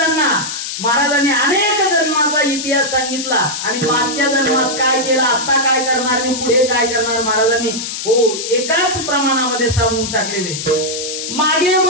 अनेक जन्माचा इतिहास सांगितला आणि मागच्या जन्मात काय केलं, आता काय करणार आणि पुढे काय करणार, महाराजांनी हो एकाच प्रमाणामध्ये सांगून टाकलेले. मागे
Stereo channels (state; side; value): noise; left; hiss, 5 dB below the sound